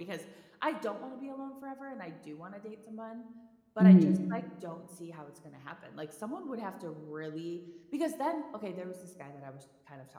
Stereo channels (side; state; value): both; identical; correlation 1.00